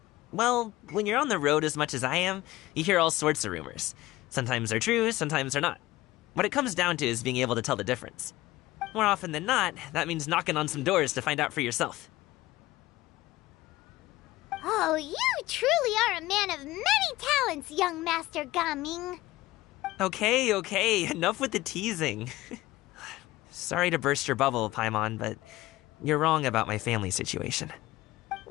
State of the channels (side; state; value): right; quieter; 17.8 dB